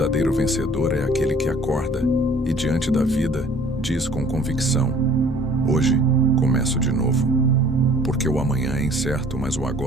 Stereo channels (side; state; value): both; normal; correlation 0.53